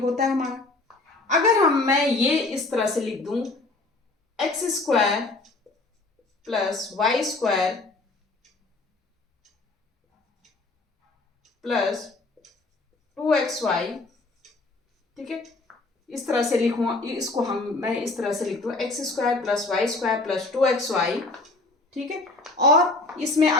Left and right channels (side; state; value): right; quieter; 3.2 dB